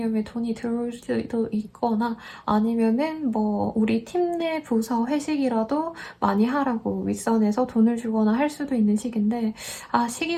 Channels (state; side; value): identical; both; correlation 1.00